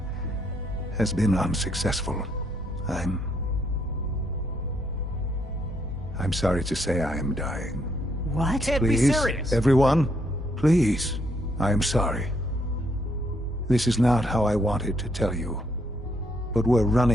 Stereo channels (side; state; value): both; normal; correlation 0.73